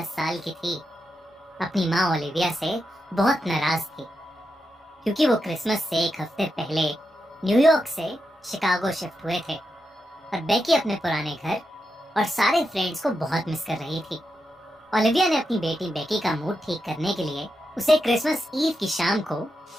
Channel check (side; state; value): both; normal; correlation 0.86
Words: साल की थी, अपनी माँ ओलिविया से बहुत नाराज थी क्योंकि वो क्रिसमस से एक हफ्ते पहले न्यूयॉर्क से शिकागो शिफ्ट हुए थे और बेकी अपने पुराने घर और सारे फ्रेंड्स को बहुत मिस कर रही थी। ओलिविया ने अपनी बेटी बेकी का मूड ठीक करने के लिए उसे क्रिसमस ईव की शाम को